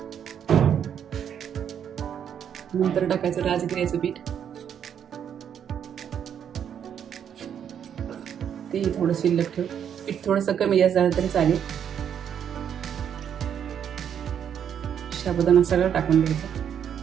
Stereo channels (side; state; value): left; quieter; 8.7 dB